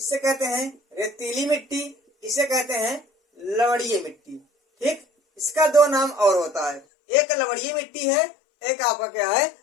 कहते हैं रेतीली मिट्टी, इसे कहते हैं लवणीय मिट्टी। ठीक, इसका 2 नाम और होता है, एक लवणीय मिट्टी है, एक आपका क्या है?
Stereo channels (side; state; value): right; drops out; at 6.8 s